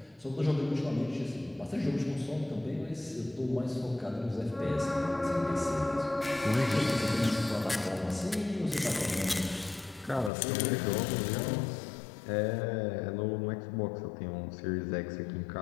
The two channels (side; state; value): right; drops out; at 10.3 s